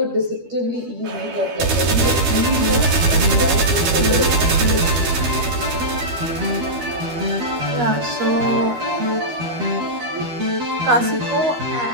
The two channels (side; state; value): left; late; 12 ms